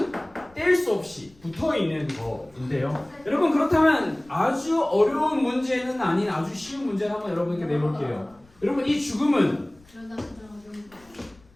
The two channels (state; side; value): noise; left; rumble, 28 dB below the sound